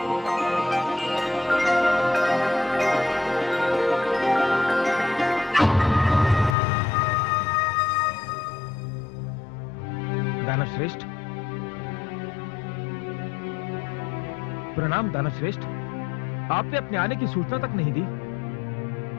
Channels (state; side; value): drops out; right; at 6.6 s